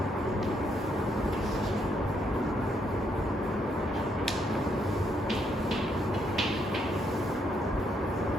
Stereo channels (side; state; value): both; normal; correlation 0.74